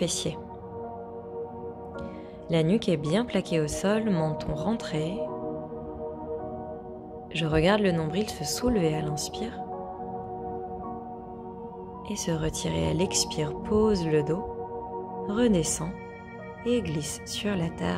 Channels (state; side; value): identical; both; correlation 1.00